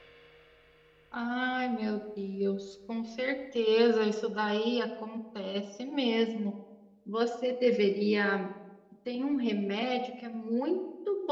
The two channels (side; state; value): both; identical; correlation 1.00